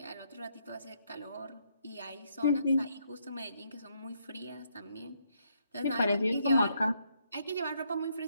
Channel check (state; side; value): inverted; both; correlation -0.74